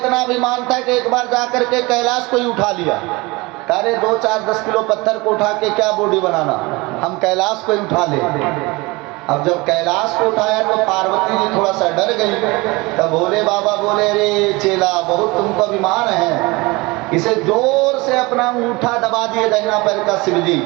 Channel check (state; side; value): quieter; left; 23.9 dB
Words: अभिमान था कि एक बार जाकर के कैलाश को ही उठा लिया। अरे 2-4-10 किलो पत्थर को उठा के क्या बॉडी बनाना, हम कैलाश को ही उठा ले। अब जब कैलाश को उठाया तो पार्वती जी थोड़ा सा डर गई। तब भोले बाबा बोले, रे चेला, बहुत तुमको अभिमान है। इसे जोर से अपना अंगूठा दबा दिए दाहिना पैर का शिव जी,